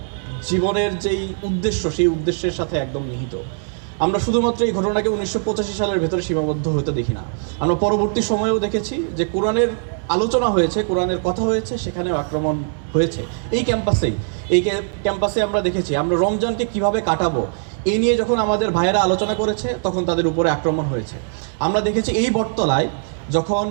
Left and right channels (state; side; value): silent; left; digital silence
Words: জীবনের যেই উদ্দেশ্য, সেই উদ্দেশ্যের সাথে একদম নিহিত। আমরা শুধুমাত্র এই ঘটনাকে 1985 সালের ভেতরে সীমাবদ্ধ হতে দেখি না, আমরা পরবর্তী সময়েও দেখেছি যে কোরআনের আলোচনা হয়েছে, কোরআনের কথা হয়েছে, সেখানেও আক্রমণ হয়েছে। এই ক্যাম্পাসে আমরা দেখেছি, আমরা রমজানকে কিভাবে কাটাবো এই নিয়ে যখন আমাদের ভাইয়েরা আলোচনা করেছে তখন তাদের উপরে আক্রমণ হয়েছে। আমরা দেখেছি এই বটতলায় যখন